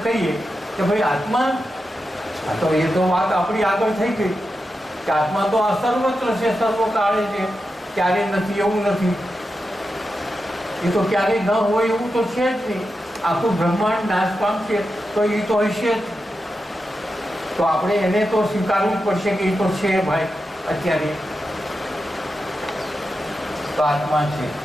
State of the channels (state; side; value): normal; both; correlation 0.89